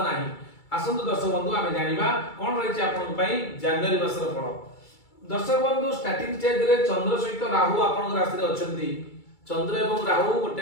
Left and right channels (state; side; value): late; right; 2.3 ms